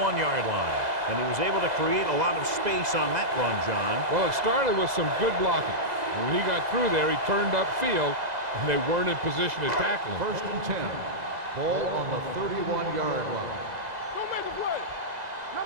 line. And he was able to create a lot of space on that run, John. Well, it started with some good blocking. When he got through there, he turned upfield, and they weren't in position to tackle him. 1st and 10. Ball on the 31-yard line. Don't make a play.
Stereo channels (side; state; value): left; late; 2.0 ms